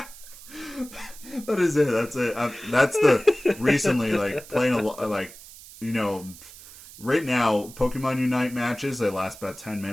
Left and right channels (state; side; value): noise; right; hiss, 18 dB below the sound